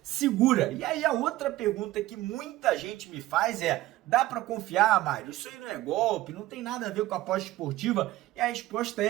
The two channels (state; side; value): quieter; left; 16.5 dB